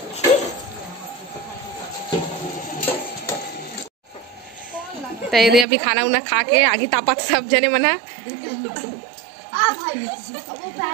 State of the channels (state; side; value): drops out; left; at 5.7 s